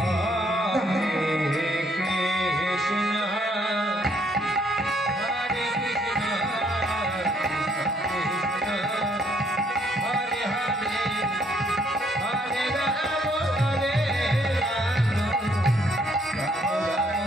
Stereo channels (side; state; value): both; normal; correlation 0.68